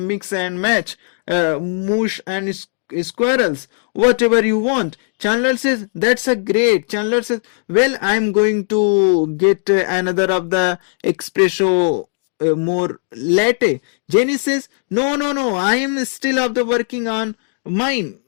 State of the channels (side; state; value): right; silent; digital silence